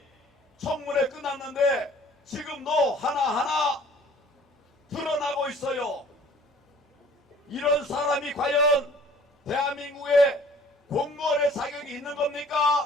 청문회 끝났는데 지금도 하나하나 드러나고 있어요. 이런 사람이 과연 대한민국의 공무원의 자격이 있는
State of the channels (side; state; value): both; normal; correlation 0.52